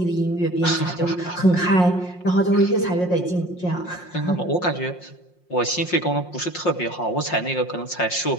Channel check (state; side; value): late; right; 5.6 ms